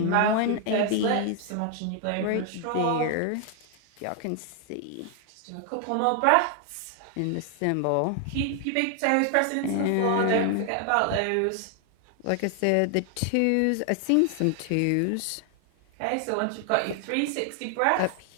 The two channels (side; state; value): both; different; correlation 0.00